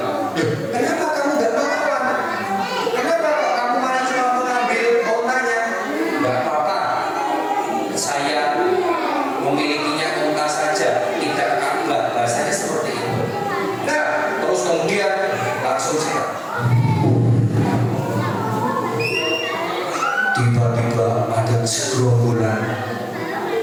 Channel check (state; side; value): identical; both; correlation 1.00